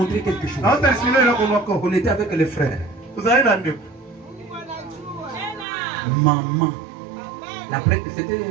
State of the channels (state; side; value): drops out; left; at 5.7 s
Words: quelque chose. On était avec les frères. Maman. C'était